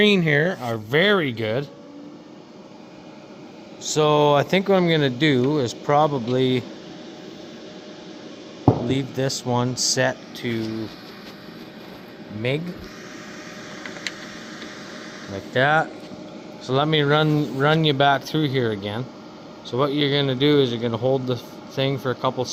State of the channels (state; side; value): identical; both; correlation 1.00